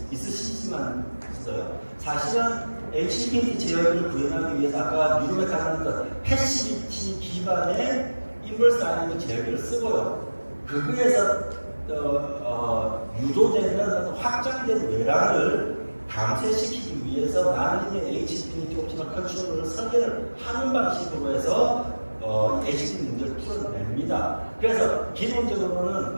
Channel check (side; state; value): both; inverted; correlation -1.00